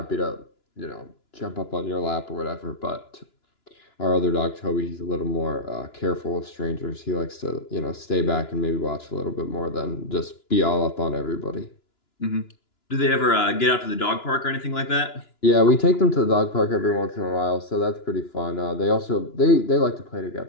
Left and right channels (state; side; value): late; right; 2.9 ms